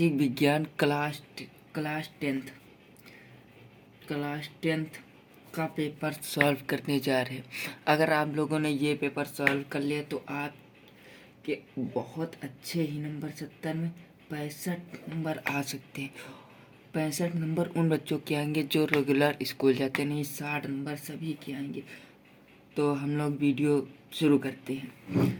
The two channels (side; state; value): both; identical; correlation 1.00